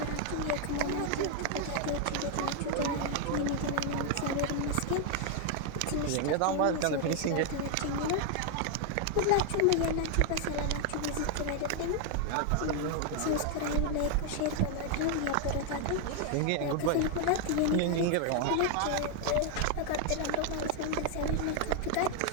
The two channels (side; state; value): both; different; correlation 0.00